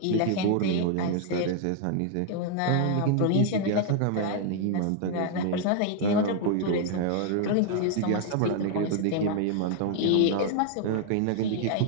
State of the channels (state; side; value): different; both; correlation 0.00